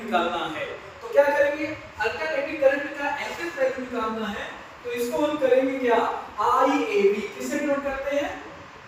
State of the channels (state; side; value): identical; both; correlation 1.00